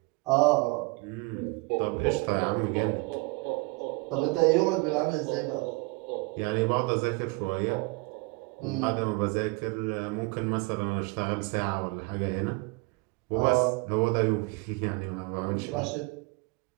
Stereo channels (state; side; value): quieter; left; 26.9 dB